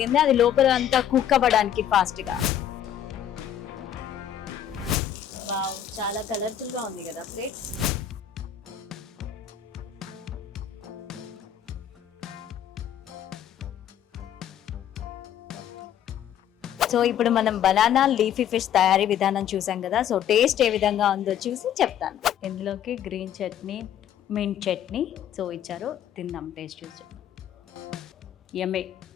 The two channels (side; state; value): right; quieter; 10.0 dB